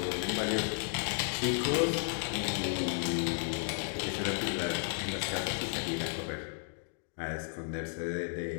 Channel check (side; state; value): right; silent; 55 dB below the other